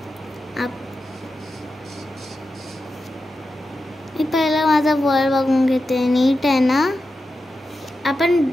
मी पहिला माझा वर्ल्ड बघून घेते. नीट आहे ना.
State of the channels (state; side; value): normal; both; correlation 0.90